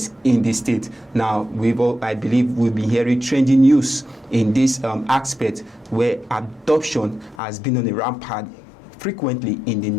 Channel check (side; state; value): right; drops out; at 7.4 s